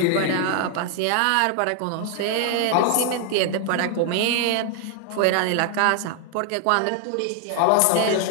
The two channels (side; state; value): both; different; correlation 0.00